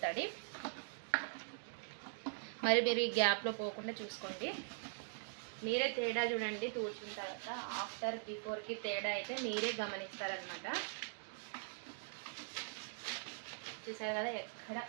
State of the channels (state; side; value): silent; left; digital silence